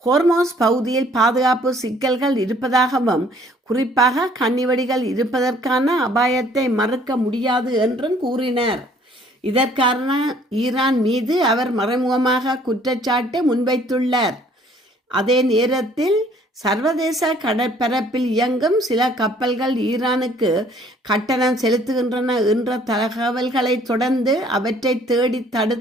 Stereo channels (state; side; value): normal; both; correlation 0.59